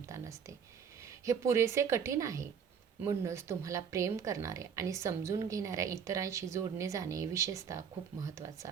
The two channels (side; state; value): left; quieter; 7.2 dB